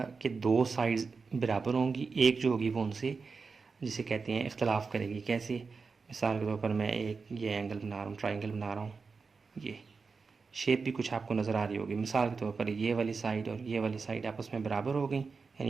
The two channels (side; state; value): left; quieter; 4.8 dB